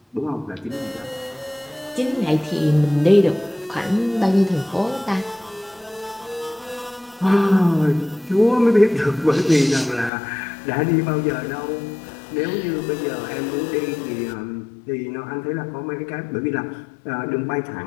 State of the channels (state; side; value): drops out; right; at 10.1 s